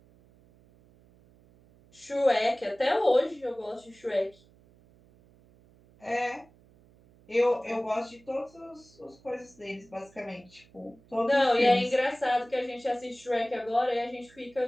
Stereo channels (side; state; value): right; noise; hum, 28 dB below the sound